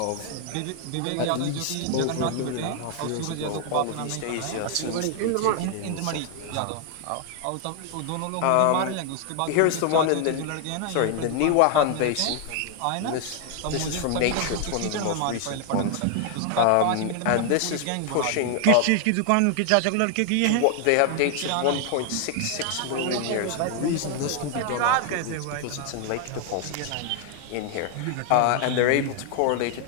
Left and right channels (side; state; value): both; different; correlation 0.00